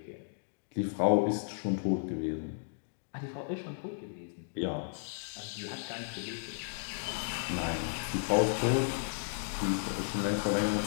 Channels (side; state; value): right; silent; digital silence